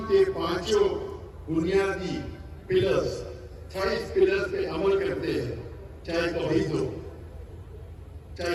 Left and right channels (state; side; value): identical; both; correlation 1.00